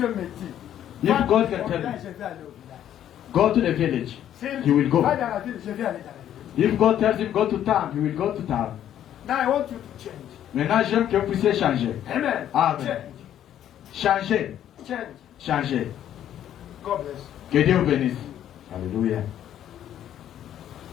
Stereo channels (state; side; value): quieter; right; 10.9 dB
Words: me dit, If va God au can tell village, me, je vais aller au village. go to the village, S'il he will go. va dans la ville, je vais aller dans la ville. If God tells him go to town, he will go to town. Now I want you to change. Maintenant, j'aime que vous puissiez changer. Amen. Amen. Change. Changer. Change. Changer. God bless. Que Dieu vous bénisse. Alléluia.